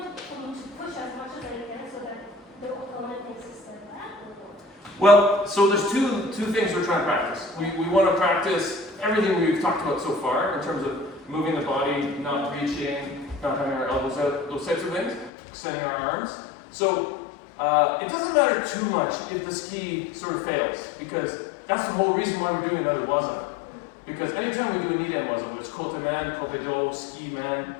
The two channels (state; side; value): drops out; right; at 15.3 s